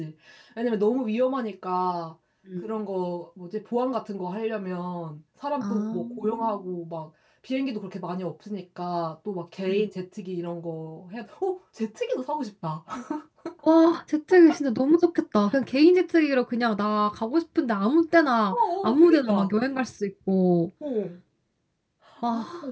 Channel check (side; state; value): both; identical; correlation 1.00